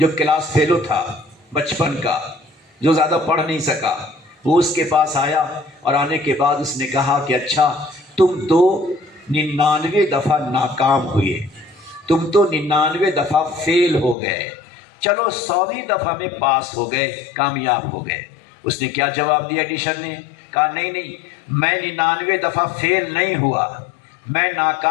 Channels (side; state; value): right; drops out; at 14.2 s